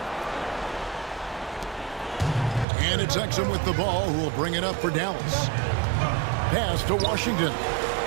And it's Exum with the ball, who will bring it up for Dallas. Pass to Washington.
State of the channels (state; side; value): drops out; left; at 2.7 s